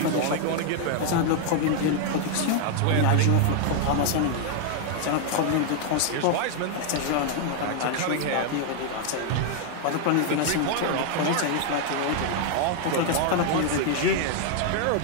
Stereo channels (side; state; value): both; different; correlation 0.00